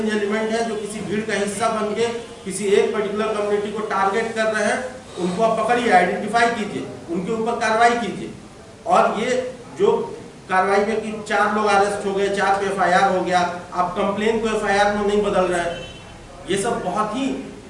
एलिमेंट है, जो किसी भीड़ का हिस्सा बन के किसी एक पर्टिकुलर कम्युनिटी को टारगेट कर रहे हैं, उनको आप पकड़िए, आइडेंटिफाई कीजिए, उनके ऊपर कार्रवाई कीजिए। और ये जो कार्रवाई में कि 4 लोग अरेस्ट हो गए, 4 पे एफआईआर हो गया, आप कंप्लेन को एफआईआर में नहीं बदल रहे हैं, ये सब बहुत ही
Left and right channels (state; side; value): identical; both; correlation 1.00